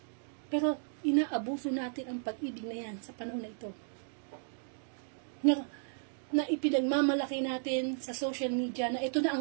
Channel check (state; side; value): silent; left; digital silence